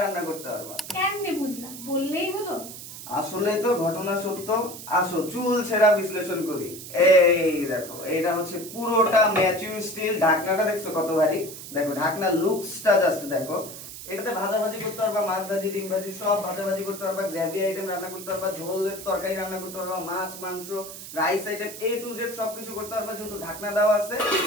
করতে পারবা। কেমনে বুঝলাম? বললেই হলো। আসলে তো ঘটনা সত্য। আসো চুল ছেঁড়া বিশ্লেষণ করি। এই দেখো, এটা হচ্ছে পুরোটা ম্যাচিউর স্টিল। ঢাকনাটা দেখছো কত ভারী? দেখো ঢাকনার লুকসটা জাস্ট দেখো। এটাতে ভাজাভাজি করতে পারবা, মাছ ভাজি, ডিম ভাজি, সব ভাজাভাজি করতে পারবা, গ্রেভি আইটেম রান্না করতে পারবা, ঝোলের তরকারি রান্না করতে পারবা, মাছ মাংস rice item A to Z সবকিছু করতে পারবা, যেহেতু ঢাকনা দেওয়া আছে।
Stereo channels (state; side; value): noise; right; hiss, 12 dB below the sound